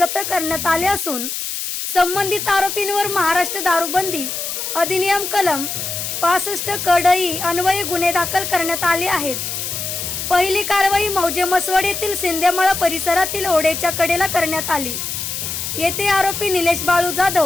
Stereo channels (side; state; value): left; noise; hiss, 4 dB below the sound